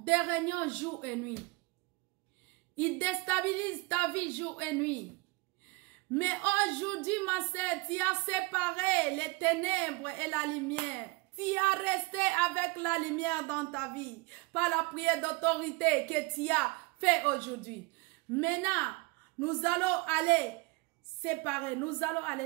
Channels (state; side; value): quieter; left; 25.8 dB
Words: réunions jour et nuit. Ils déstabilisent ta vie jour et nuit. Mais aujourd'hui, ma sœur, tu as séparé les ténèbres et la lumière. Tu as resté avec la lumière dans ta vie par la prière d'autorité que tu as fait aujourd'hui. Maintenant, nous allons aller séparer. Nous allons